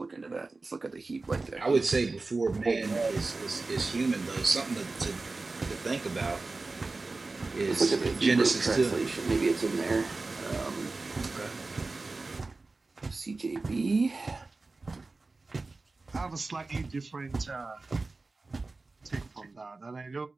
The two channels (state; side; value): quieter; left; 3.5 dB